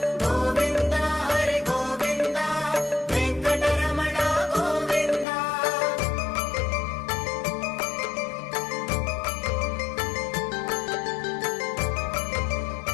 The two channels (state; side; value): drops out; right; at 5.2 s